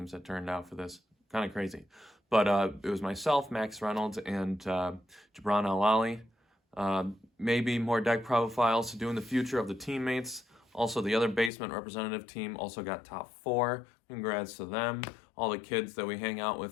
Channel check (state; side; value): drops out; right; at 11.5 s